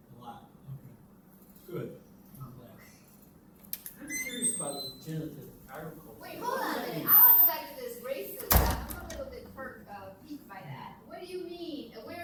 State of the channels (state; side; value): identical; both; correlation 1.00